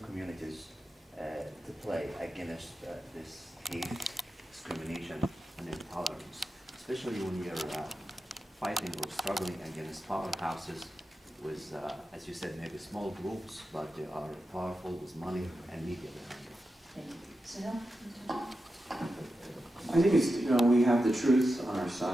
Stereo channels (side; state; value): both; normal; correlation 0.90